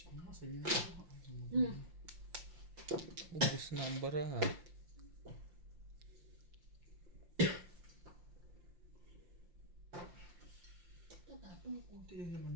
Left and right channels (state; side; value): late; left; 5.7 ms